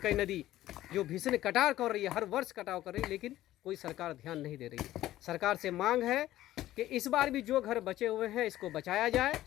नदी जो भीषण कटाव कर रही है, हर वर्ष कटाव कर रही है, लेकिन कोई सरकार ध्यान नहीं दे रही है। सरकार से मांग है कि इस बार भी जो घर बचे हुए हैं इसको बचाया जाए,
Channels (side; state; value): right; quieter; 14.4 dB